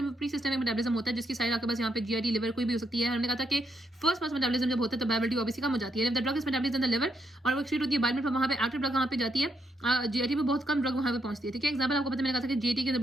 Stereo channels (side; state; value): both; normal; correlation 0.78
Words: pre systemic metabolism होता है, जिसकी साइड आपके पास यहाँ पे जीआईटी लिवर कोई भी हो सकती है। हमने कहा था कि फर्स्ट पास मेटाबॉलिज्म जब होता है तो बायोअवेलेबिलिटी ऑब्वियसली कम हो जाती है। The drug is metabolised in the liver और वो एक्सक्रीट होती है बाइल में, वहाँ पे एक्टिव ड्रग वहाँ पे जाती है, जीआईटी में बहुत कम ड्रग वहाँ पे पहुंचती है, ठीक है। एग्जाम्पल आपको पता, मैंने कहा था कि जीआईटी के